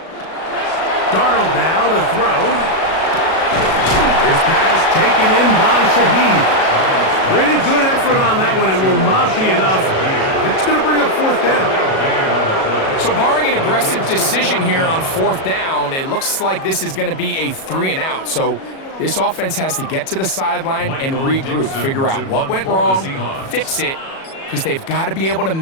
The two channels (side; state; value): right; late; 37 ms